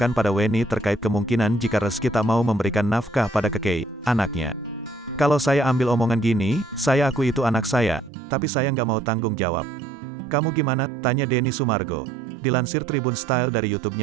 pada Weni terkait kemungkinan jika Rezky tak mau memberikan nafkah pada kekei, anaknya. Kalau saya ambil omongan gini, saya akui itu anak saya, tapi saya nggak mau tanggung jawab. Kamu gimana? Tanya Denny Sumargo. Dilansir Tribun Style dari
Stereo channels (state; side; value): drops out; left; at 8.1 s